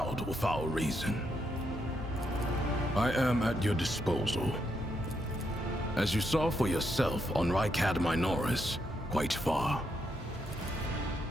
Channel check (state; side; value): normal; both; correlation 0.79